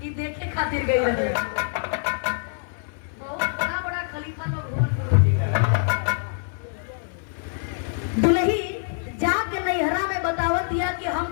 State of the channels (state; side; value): silent; right; 62 dB below the other